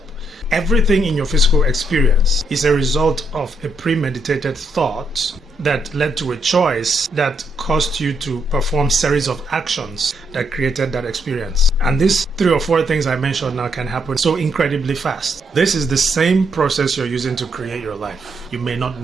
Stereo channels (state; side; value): normal; both; correlation 0.76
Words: Everything in your physical experience is a result of a premeditated thought that led to a choice that caused you to perform series of actions that created that experience. And these 3 or 4 things I mentioned now can happen so incredibly fast. This is the same process you're using to create your life. You may not